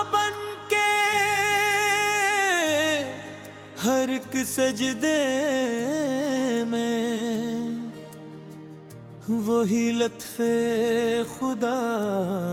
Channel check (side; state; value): both; identical; correlation 1.00